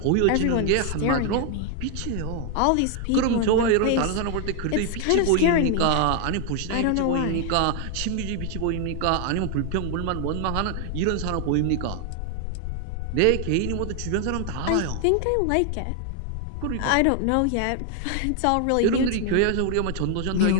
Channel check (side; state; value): both; different; correlation 0.00